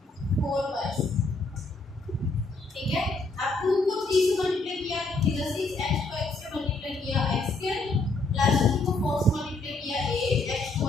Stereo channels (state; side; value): quieter; right; 3.3 dB